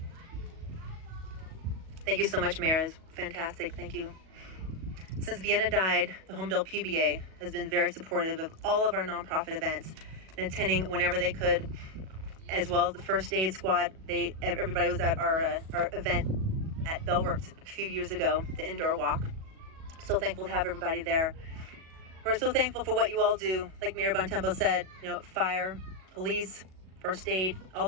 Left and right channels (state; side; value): late; left; 37 ms